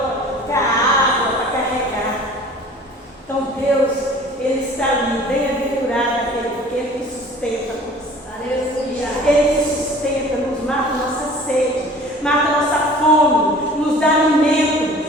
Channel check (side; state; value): both; normal; correlation 0.47